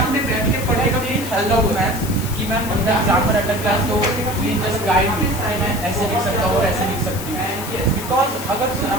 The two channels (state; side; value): noise; left; hiss, 11 dB below the sound